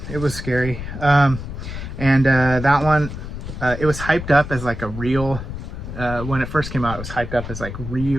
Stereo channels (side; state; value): left; noise; rumble, 8 dB below the sound